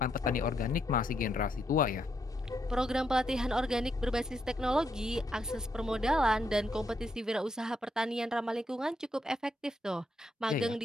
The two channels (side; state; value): both; normal; correlation 0.78